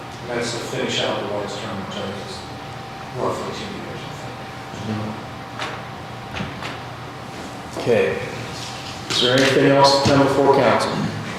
And that's to finish out the White's term, which is roughly 2 years, I think. Okay. Is there anything else to come before council?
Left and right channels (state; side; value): identical; both; correlation 1.00